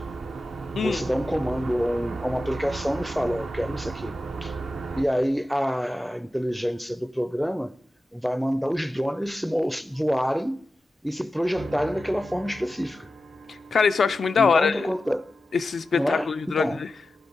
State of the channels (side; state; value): both; normal; correlation 0.93